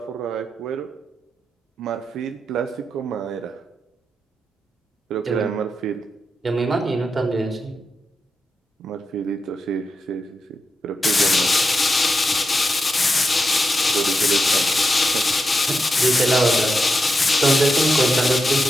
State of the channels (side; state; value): both; normal; correlation 0.87